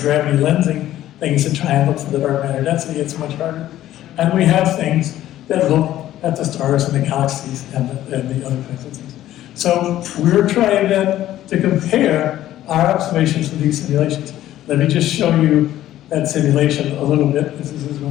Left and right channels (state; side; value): quieter; right; 13.4 dB